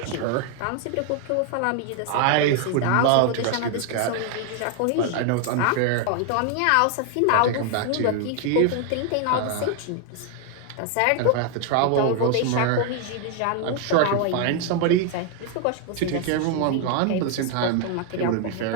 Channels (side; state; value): both; different; correlation 0.01